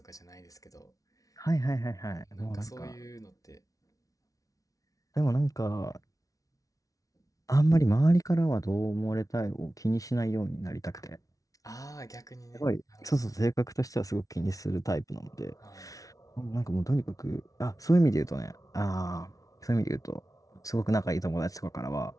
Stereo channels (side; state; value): right; late; 0.17 ms